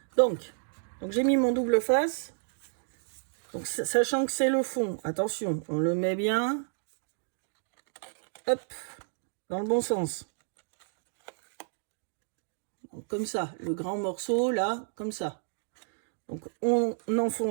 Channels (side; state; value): left; silent; digital silence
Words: Donc j'ai mis mon double face. Donc sachant que c'est le fond, attention, on le met bien. Hop, dans le bon sens. Donc, comme ça, le grand morceau là, comme ça. Donc on